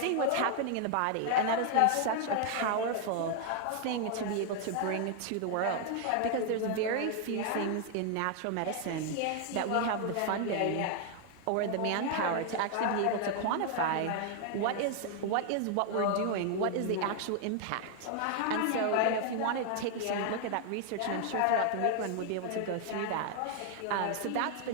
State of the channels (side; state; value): both; different; correlation 0.00